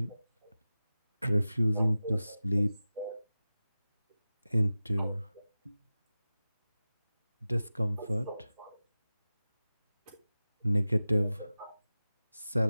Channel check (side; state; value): both; inverted; correlation -0.95